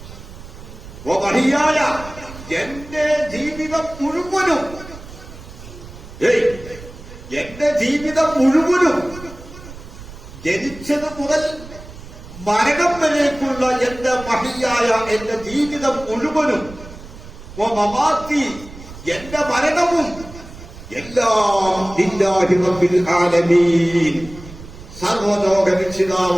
വഹിയായ എന്റെ ജീവിതം മുഴുവനും, എന്റെ ജീവിതം മുഴുവനും, ജനിച്ചത് മുതൽ മരണം വരേക്കുള്ള എന്റെ മഹിയായ എന്റെ ജീവിതം മുഴുവനും, മമാത്തി എന്റെ മരണവും, എല്ലാം ലില്ലാഹി റബ്ബിൽ ആലമീൻ, സർവലോക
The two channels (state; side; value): noise; right; rumble, 16 dB below the sound